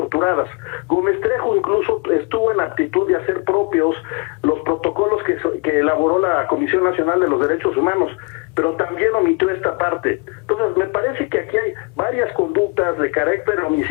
Gómez Trejo incluso estuvo en aptitud de hacer propios los protocolos que elaboró la Comisión Nacional de los Derechos Humanos, pero también omitió esta parte. Entonces, me parece que aquí hay varias conductas de carácter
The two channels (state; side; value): quieter; right; 30.8 dB